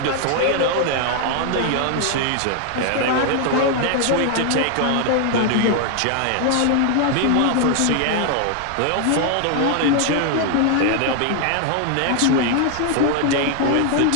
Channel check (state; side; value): different; both; correlation 0.00